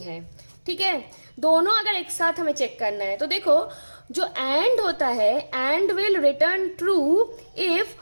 है। ठीक है, दोनों अगर एक साथ हमें चेक करना है, तो देखो जो एंड होता है, and will return true if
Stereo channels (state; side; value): inverted; both; correlation -1.00